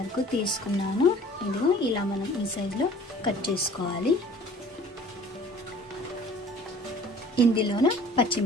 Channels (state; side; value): normal; both; correlation 0.49